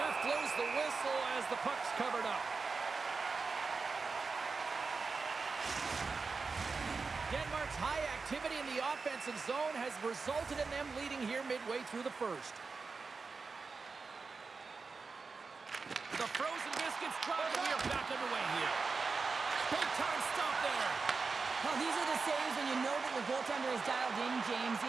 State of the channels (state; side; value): quieter; left; 4.5 dB